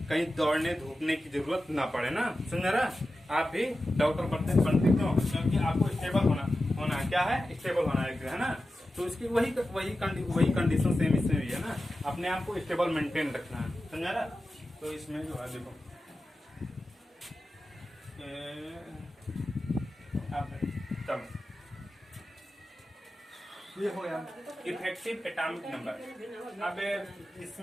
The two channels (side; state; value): both; normal; correlation 0.93